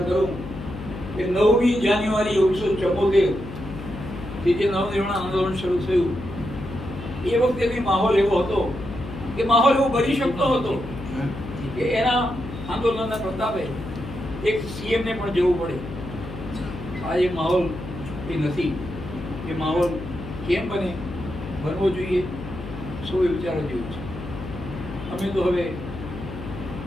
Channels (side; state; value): left; noise; hum, 10 dB below the sound